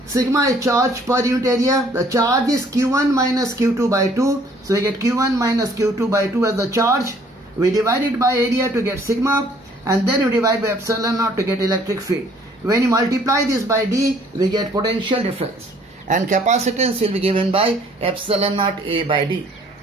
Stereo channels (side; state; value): both; normal; correlation 0.59